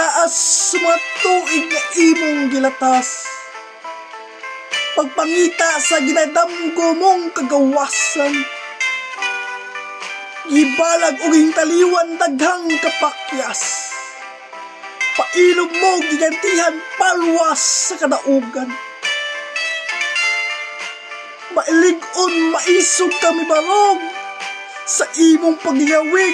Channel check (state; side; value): identical; both; correlation 1.00